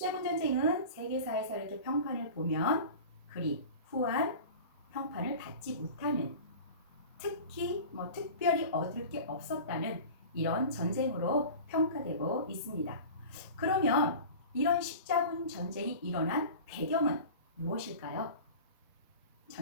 전쟁은 세계사에서 이렇게 평판을 보면 그리 후한 평판을 받지 못하는, 특히 특별히 얻을 게 없었다는 이런 전쟁으로 평가되고 있습니다. 그러면 이런 십자군 전쟁이 일어난 배경은 무엇일까요?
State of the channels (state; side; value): inverted; both; correlation -0.36